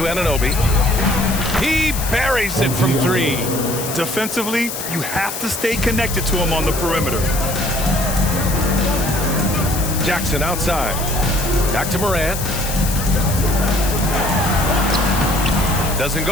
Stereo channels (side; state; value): left; noise; hiss, 6 dB below the sound